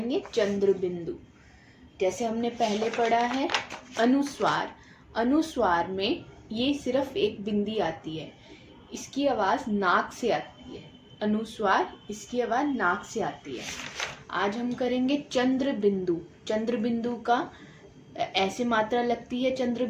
चंद्र बिंदु। जैसे हमने पहले पढ़ा है अनुस्वार। अनुस्वार में ये सिर्फ एक बिंदी आती है, इसकी आवाज़ नाक से आती है। अनुस्वार, इसकी आवाज़ नाक से आती है। आज हम करेंगे चंद्र बिंदु। चंद्र बिंदु का ऐसे मात्रा लगती है चंद्र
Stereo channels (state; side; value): identical; both; correlation 1.00